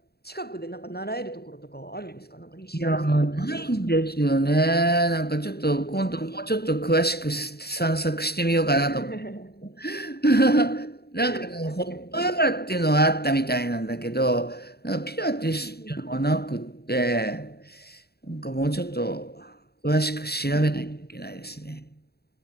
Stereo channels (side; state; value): right; late; 0.47 ms